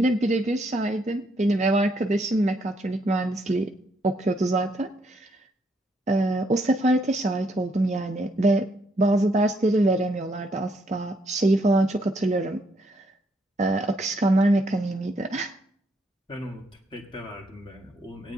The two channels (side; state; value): both; normal; correlation 0.73